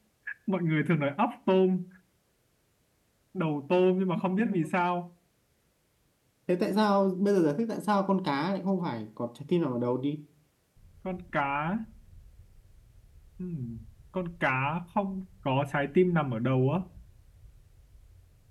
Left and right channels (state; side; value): identical; both; correlation 1.00